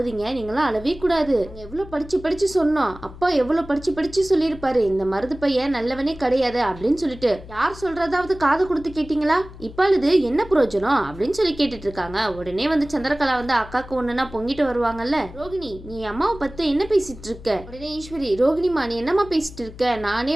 நீங்களாம் அழவே கூடாது. எவ்வளோ படிச்சு சொன்னோம். அப்பா எவ்வளோ படிச்சு சொல்லியிருப்பாரு, இந்த மருது பையன் நல்லவனே கிடையாது அப்படின்னு சொல்லிட்டு. யார் சொல்றதாவது காது கொடுத்து கேட்டீங்களா? இப்ப அழுது என்ன பிரயோஜனம் அப்படின்னு சொல்லி கேட்டுட்டு இருக்காங்க. உடனே வந்து சந்திரகலா வந்து அக்காக்கு ஒண்ணுன்னா பொங்கிட்டு வருவாங்கல்ல. ரோகிணி, நீ அம்மாவை பத்தி என்ன பேசிட்டு இருக்க? உடனே ஈஸ்வரி, ரோகிணிமா நீ என்னம்மா பேசிட்டு இருக்க? நானே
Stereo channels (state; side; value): noise; left; hum, 16 dB below the sound